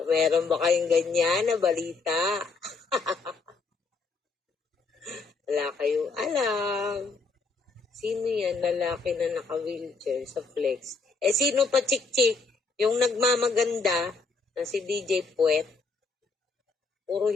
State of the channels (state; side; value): quieter; right; 4.1 dB